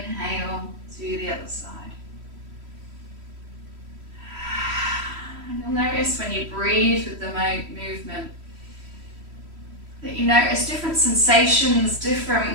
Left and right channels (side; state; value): left; late; 3.1 ms